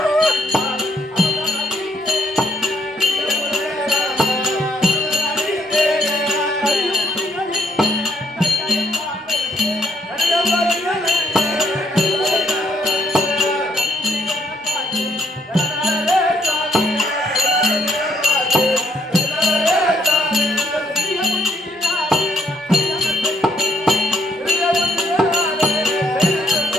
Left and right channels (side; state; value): both; normal; correlation 0.70